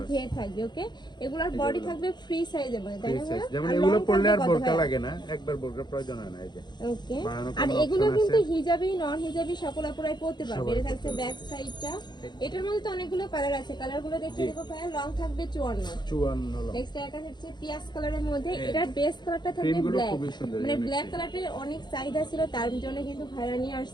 ঘের থাকবে। ওকে, এগুলোর বডি থাকবে ফ্রি সাইজের মধ্যে, তাই না? যেমন এগুলো পরলে আর বোরকা লাগে না, একবার বোরকা প্রয়োজন হয় না। এই যে ওকে, আর এগুলো কিন্তু হিজাবি নন হিজাবি সকল আপুরাই পরতে পারবে। এটা থাকছে ব্যাক সাইডটা। এটার মধ্যে তো অনেকগুলো কালার আছে, কালারগুলো দেখিয়ে দেব ভাই। লং থাকবে 54 লং। নেক্সট একটা হচ্ছে পিয়াজ কালারের মধ্যে, এটার বেস কালারটা থাকবে ব্ল্যাক, মানে ব্ল্যাক কালারের অনেক চাহিদা ছিল, তার জন্য কিন্তু ভাইরা নিয়ে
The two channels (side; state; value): right; late; 0.21 ms